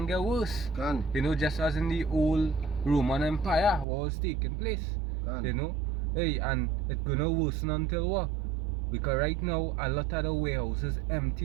get worse. You know, just as in the old Roman Empire, what was taking place. You know, hey, and it's going to worsen until what? Because right now, a lot of the warehouses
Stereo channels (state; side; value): drops out; left; at 3.9 s